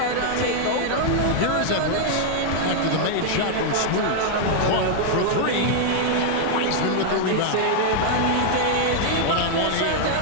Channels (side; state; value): both; different; correlation 0.00